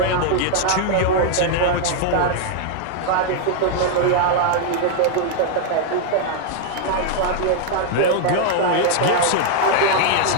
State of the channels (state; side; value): different; both; correlation 0.00